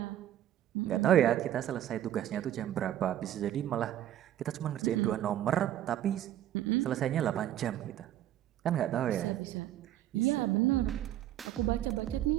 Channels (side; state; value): left; quieter; 12.1 dB